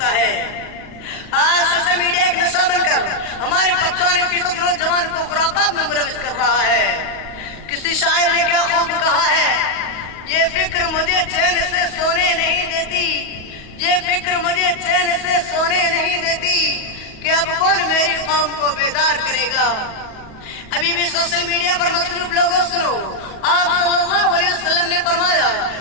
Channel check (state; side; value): late; right; 37 ms